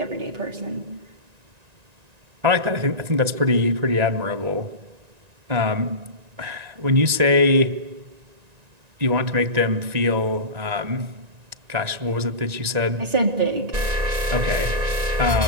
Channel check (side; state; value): left; late; 1.9 ms